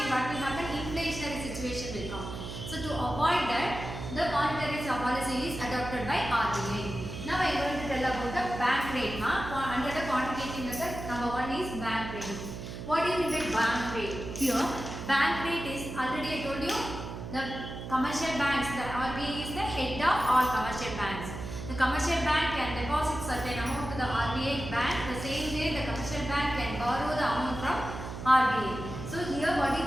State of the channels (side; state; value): right; noise; hum, 8 dB below the sound